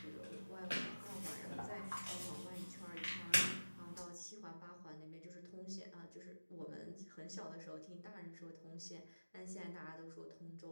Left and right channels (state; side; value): inverted; both; correlation -1.00